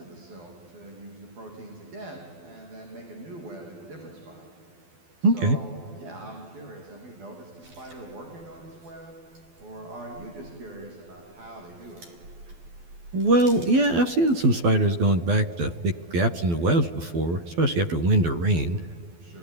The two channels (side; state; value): left; late; 12 ms